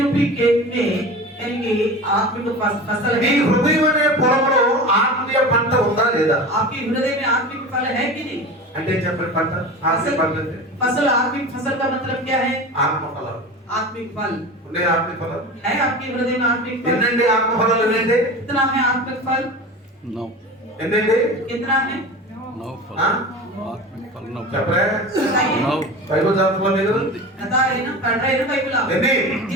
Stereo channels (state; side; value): normal; both; correlation 0.31